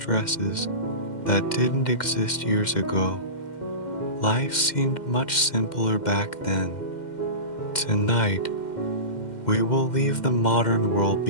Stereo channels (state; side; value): late; right; 2.1 ms